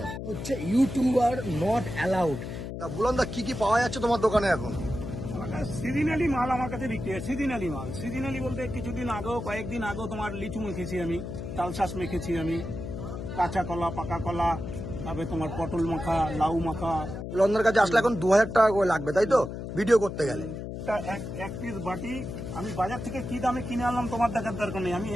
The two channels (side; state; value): left; noise; hum, 7 dB below the sound